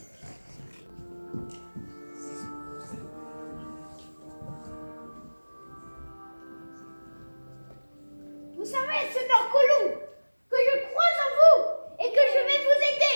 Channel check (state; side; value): inverted; both; correlation -1.00